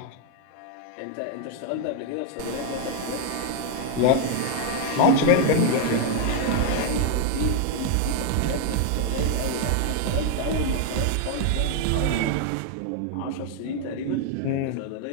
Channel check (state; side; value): different; both; correlation 0.00